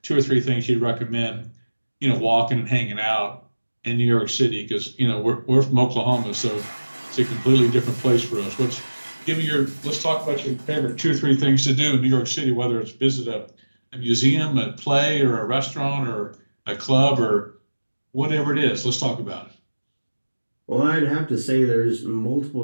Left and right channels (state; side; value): inverted; both; correlation -1.00